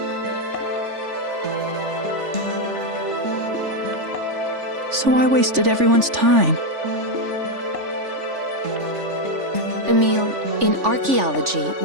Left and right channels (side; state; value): left; late; 3.4 ms